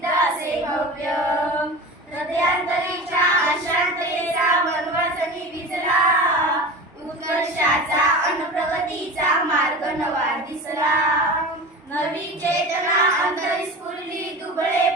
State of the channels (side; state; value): both; normal; correlation 0.32